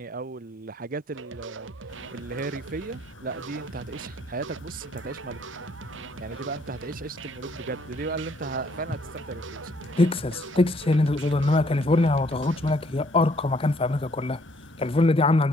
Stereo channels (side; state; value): both; normal; correlation 0.64